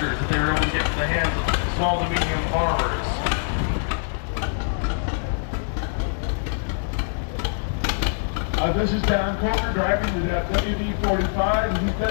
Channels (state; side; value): silent; right; digital silence